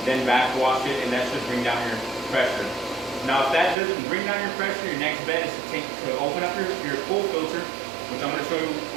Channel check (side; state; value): left; drops out; at 3.8 s